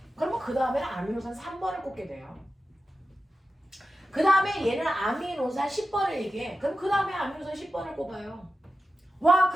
그러면 그 다음에는 아미노산 3번을 꼽게 돼요. 그 다음에 얘는 아미노산 10번을 얘기해. 그럼 그 다음에 아미노산 10번을 꼽아요. 와,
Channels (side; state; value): both; normal; correlation 0.93